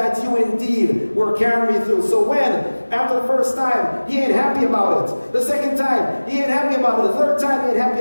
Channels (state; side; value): inverted; both; correlation -1.00